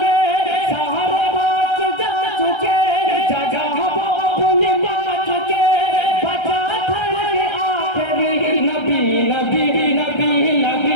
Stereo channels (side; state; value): right; late; 1.3 ms